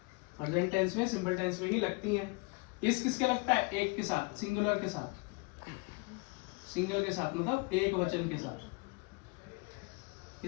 प्रेजेंट टेंस में, सिंपल टेंस में ही लगती है। इस किसके लगता है? एक के साथ, सिंगुलर के साथ, सिंगल के साथ मतलब एक वचन के साथ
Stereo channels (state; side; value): quieter; right; 28.8 dB